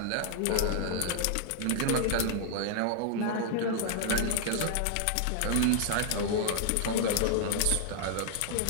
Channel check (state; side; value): different; both; correlation -0.01